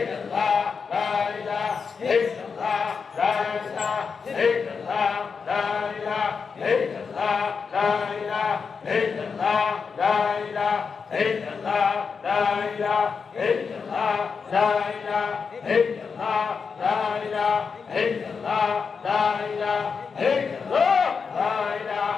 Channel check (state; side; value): quieter; right; 5.5 dB